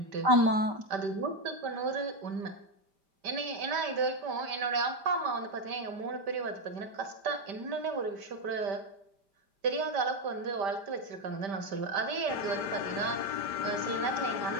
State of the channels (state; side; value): late; left; 5.1 ms